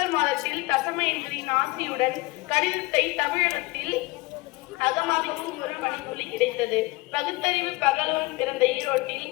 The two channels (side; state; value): right; quieter; 22.7 dB